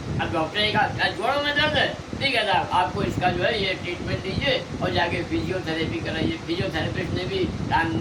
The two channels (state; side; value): identical; both; correlation 1.00